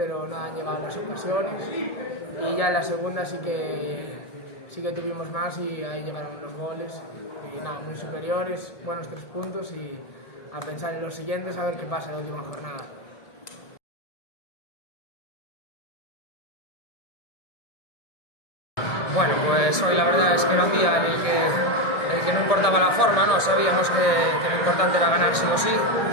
no han llegado las ocasiones. Y ya en la segunda sí que tuvimos más y ahí llegaron los goles. Y nada, muy superiores, buenos 3 puntos y a pensar en los siguientes, a ver qué pasa en la última jornada. Bueno, pues hoy la verdad es que era un día en el que no importaba la forma, ¿no? Sabíamos que lo importante era ganar sí o sí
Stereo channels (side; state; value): right; late; 1.7 ms